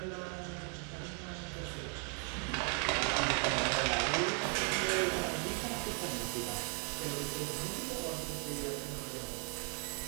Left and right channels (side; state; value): left; quieter; 34.8 dB